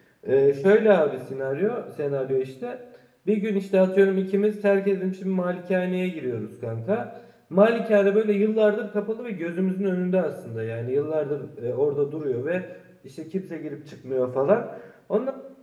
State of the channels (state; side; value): identical; both; correlation 1.00